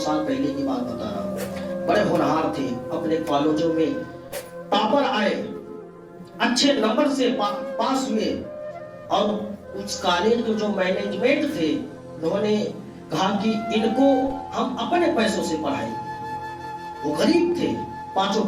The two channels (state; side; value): identical; both; correlation 1.00